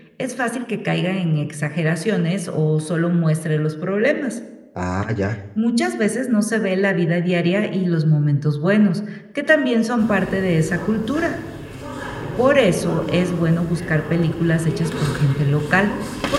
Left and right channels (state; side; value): identical; both; correlation 1.00